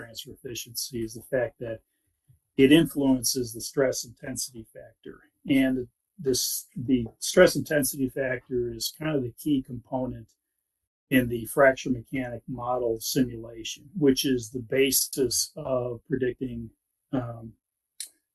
efficiency is the fact that it influences the stress intensity factor. And the stress intensity factor is kind of the key component in the fracture mechanic model simulation, which is the basis of predicting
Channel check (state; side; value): identical; both; correlation 1.00